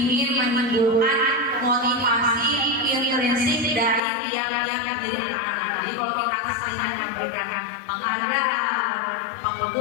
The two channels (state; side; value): drops out; right; at 4.0 s